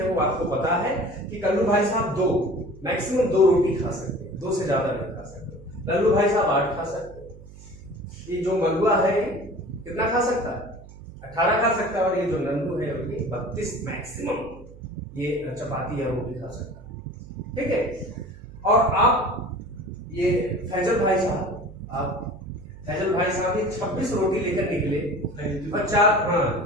वो आपको पता है कि कल्लू भाई साहब मैक्सिमम 2 रोटी खा सकते हैं, 2 से ज्यादा नहीं खा सकते। लल्लू भाई साहब 8 खा सकते हैं। ये जो मलुआ है कितना खा सकता है, 18 खा सकता है। और ये जो नंदू है ये 32 मैक्सिमम ये चपाती है वो भी खा सकता है, ठीक है। और आप ये फैजल भाई साहब ये 26 रोटी लेकर निकले और 4, हाँ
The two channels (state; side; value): noise; right; hum, 18 dB below the sound